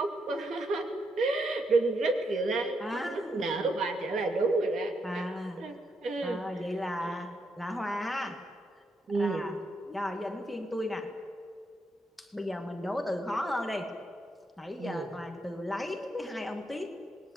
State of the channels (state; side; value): normal; both; correlation 0.79